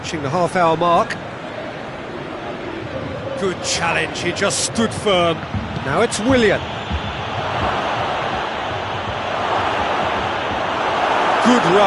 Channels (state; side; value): identical; both; correlation 1.00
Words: the half-hour mark. Good challenge, he just stood firm. Now it's Willian. Good